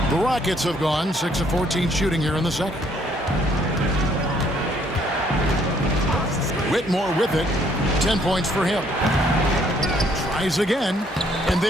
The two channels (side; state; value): both; normal; correlation 0.65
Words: The Rockets have gone 6 of 14 shooting here in the second. Whitmore with it. 10 points for him. Tries again. And